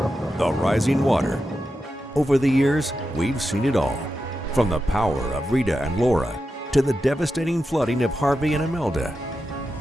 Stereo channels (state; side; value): normal; both; correlation 0.89